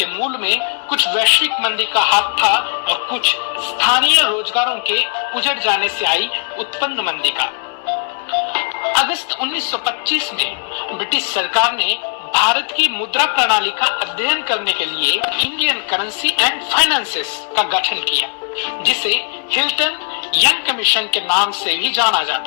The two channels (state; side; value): quieter; right; 38.8 dB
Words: मूल में कुछ वैश्विक मंदी का हाथ था और कुछ स्थानीय रोजगारों के उजड़ जाने से आई उत्पन्न मंदी का। अगस्त 1925 में ब्रिटिश सरकार ने भारत की मुद्रा प्रणाली का अध्ययन करने के लिए इंडियन करेंसी एंड फाइनेंसेस का गठन किया, जिसे हिल्टन यंग कमीशन के नाम से भी जाना